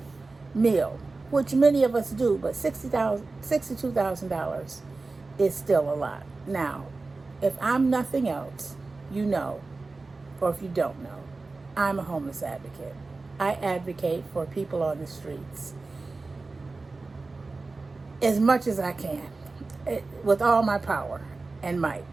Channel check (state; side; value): quieter; left; 3.6 dB